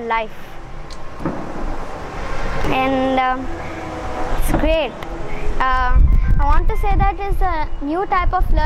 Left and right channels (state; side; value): identical; both; correlation 1.00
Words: and it's great. I want to say that it's a new type of